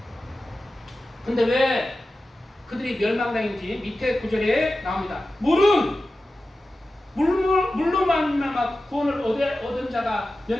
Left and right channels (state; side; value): normal; both; correlation 0.94